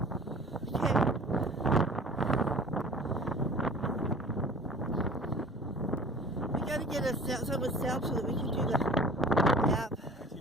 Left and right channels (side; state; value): both; normal; correlation 0.45